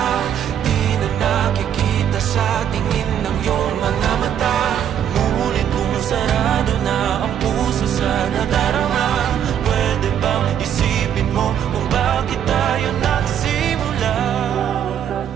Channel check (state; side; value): quieter; left; 9.4 dB